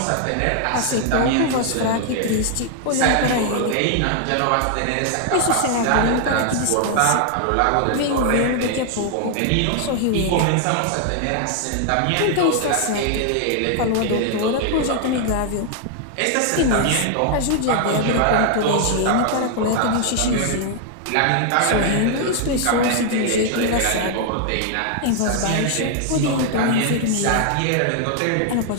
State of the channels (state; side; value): different; both; correlation 0.00